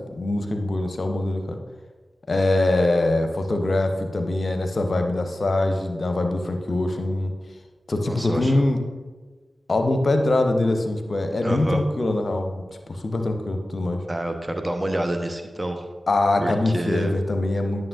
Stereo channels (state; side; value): normal; both; correlation 0.95